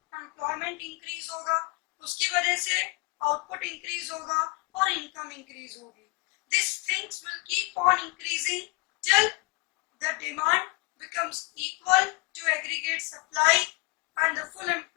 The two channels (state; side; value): quieter; right; 27.5 dB